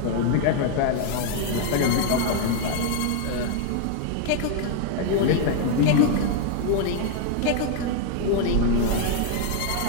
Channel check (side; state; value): both; different; correlation 0.00